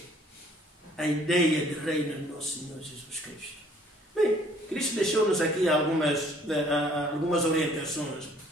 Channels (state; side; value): normal; both; correlation 0.59